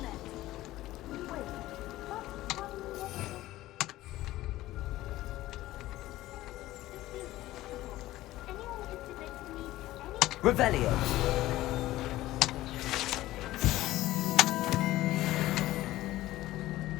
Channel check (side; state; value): right; quieter; 16.1 dB